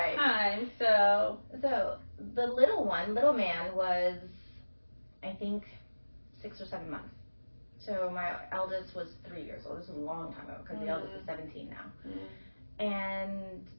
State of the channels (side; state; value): both; inverted; correlation -1.00